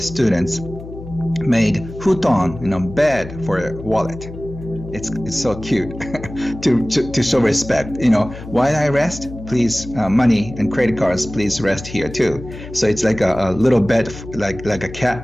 made futon, bed for a wallet. It's so cute to show respect. While I rest, please, money and credit cards, please rest here too. So it's like a little bed, like a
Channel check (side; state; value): left; noise; hum, 13 dB below the sound